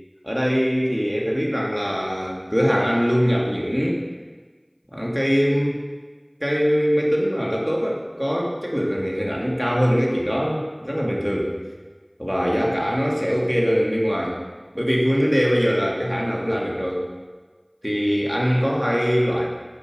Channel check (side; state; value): both; identical; correlation 1.00